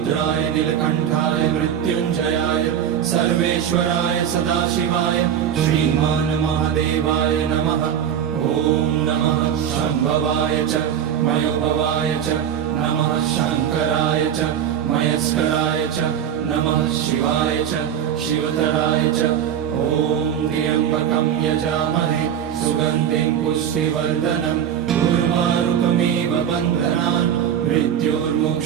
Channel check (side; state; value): left; quieter; 9.3 dB